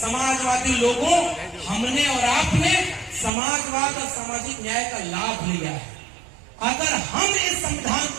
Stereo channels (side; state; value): left; drops out; at 3.3 s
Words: लोगों, हमने और आपने समाजवाद और सामाजिक न्याय का लाभ लिया है। अगर हम इस संविधान